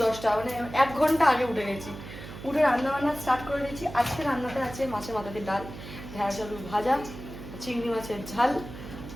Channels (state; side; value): noise; right; hum, 12 dB below the sound